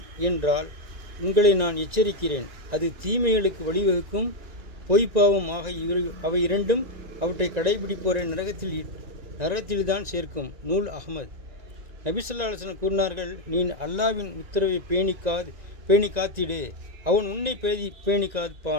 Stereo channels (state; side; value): late; left; 1.9 ms